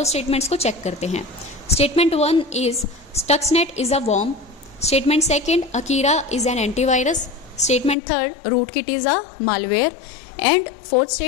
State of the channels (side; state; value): right; drops out; at 8.0 s